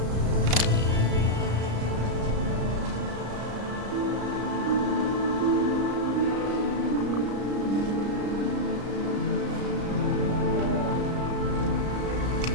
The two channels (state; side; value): late; left; 34 ms